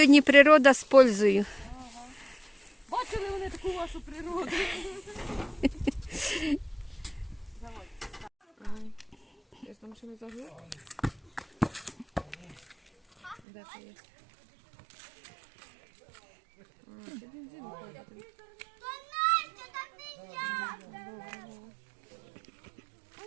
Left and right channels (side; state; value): left; drops out; at 13.4 s